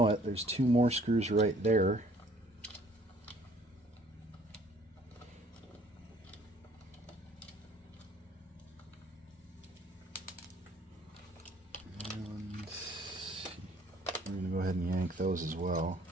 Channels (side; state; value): both; normal; correlation 0.59